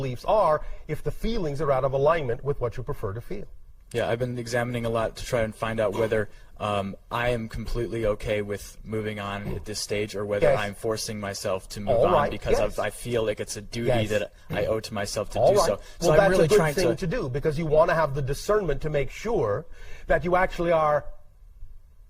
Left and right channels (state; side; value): identical; both; correlation 1.00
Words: are if the feelings are out of alignment with what you prefer to feel. Yeah, I've been examining a lot to try and find out whether I am completely okay with moving on at this stage, or whether I'm forcing myself to move on because I feel like it's a duty that I owe to myself to do so. So well, I'm really that's a trying good thing to do, because you want to have the discernment to make sure that you actually are